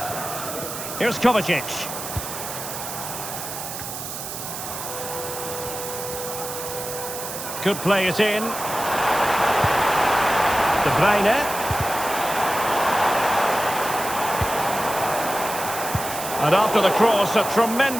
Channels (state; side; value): noise; right; hiss, 7 dB below the sound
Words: Here's Kovacic. Could play it in. De Bruyne. And after the cross, a